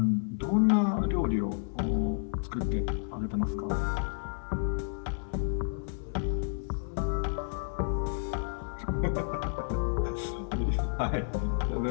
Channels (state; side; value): silent; right; 57 dB below the other